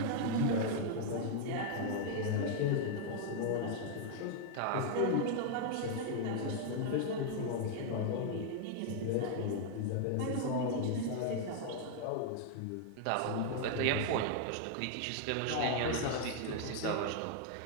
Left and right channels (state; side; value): different; both; correlation 0.00